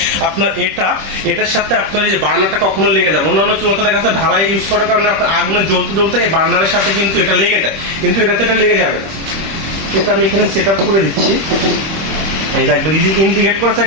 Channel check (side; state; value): left; late; 26 ms